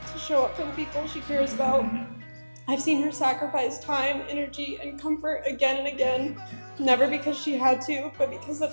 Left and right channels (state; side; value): inverted; both; correlation -1.00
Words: to show up for the people she cares about. I've seen her sacrifice time, energy, and comfort again and again, never because she had to, but because